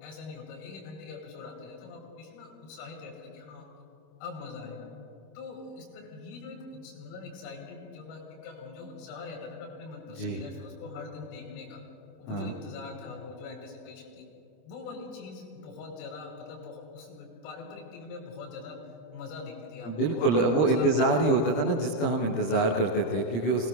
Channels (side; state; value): right; late; 26 ms